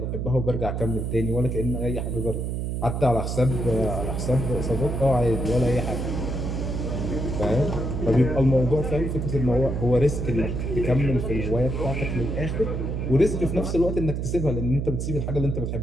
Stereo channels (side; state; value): right; noise; hum, 2 dB below the sound